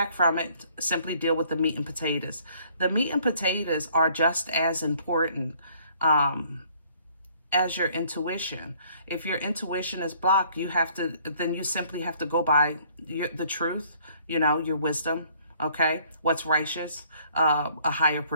from it. Simply deal with the meat and potatoes. The meat and potatoes are just as important as your intuition. If your intuition is blocked, then you simply have to go by the truth, you know, your wisdom, okay? What's righteous, a higher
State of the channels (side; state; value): both; inverted; correlation -0.60